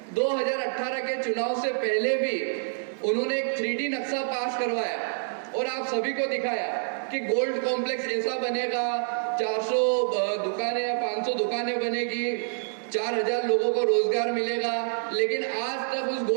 2018 के चुनाव से पहले भी उन्होंने एक 3D नक्शा पास करवाया और आप सभी को दिखाया कि गोल्ड कॉम्प्लेक्स ऐसा बनेगा, 400 दुकानें या 500 दुकानें बनेगी, 4000 लोगों को रोजगार मिलेगा। लेकिन आज तक उस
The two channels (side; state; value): left; silent; digital silence